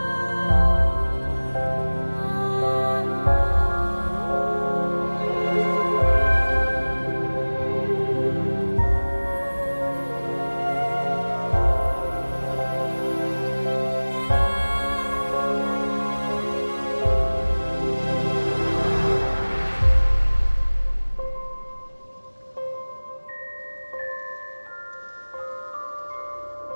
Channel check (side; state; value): both; inverted; correlation -1.00